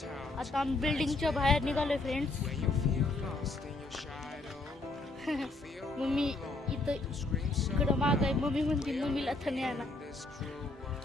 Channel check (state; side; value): quieter; right; 3.1 dB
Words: आता आम्ही बिल्डिंगच्या बाहेर निघालोय फ्रेंड्स. मम्मी इथं इकडं माग आहे. मम्मी म्हणते मम्मीला तर नाही आला.